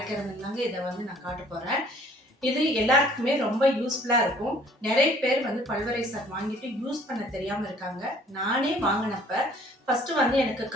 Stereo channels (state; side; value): normal; both; correlation 0.56